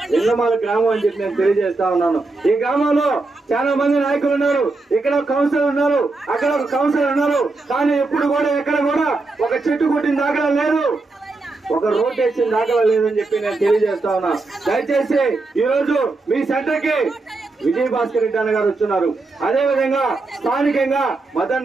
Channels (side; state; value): left; quieter; 3.4 dB